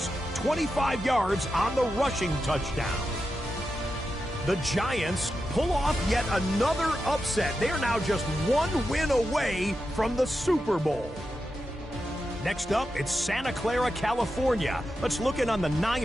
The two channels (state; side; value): normal; both; correlation 0.89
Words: 25 yards on the rushing touchdown. The Giants pull off yet another upset. They are now just one win away from the Super Bowl. Next up, it's Santa Clara, California. Let's look in on the